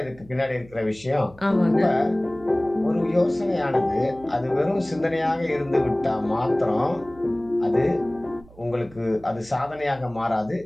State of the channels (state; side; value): noise; right; hum, 23 dB below the sound